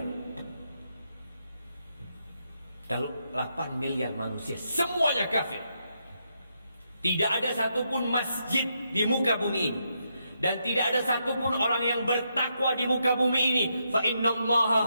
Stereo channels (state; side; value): inverted; both; correlation -0.80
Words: Kalau 8 miliar manusia semuanya kafir, tidak ada satupun masjid di muka bumi ini, dan tidak ada satupun orang yang bertakwa di muka bumi ini, fa